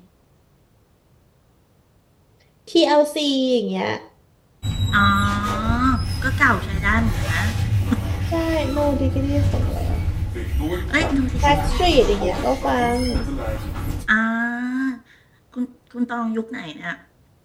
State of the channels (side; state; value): both; identical; correlation 1.00